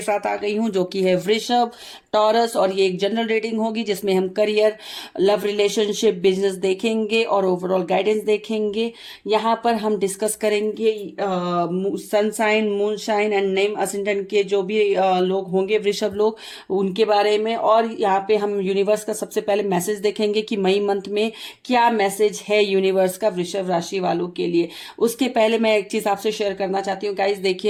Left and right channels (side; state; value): both; identical; correlation 1.00